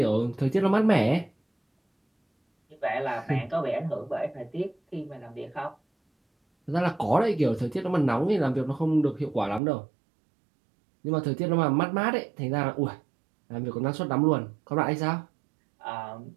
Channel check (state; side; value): drops out; left; at 9.6 s